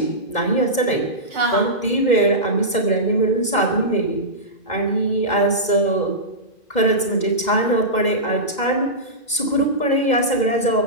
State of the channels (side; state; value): right; late; 2.1 ms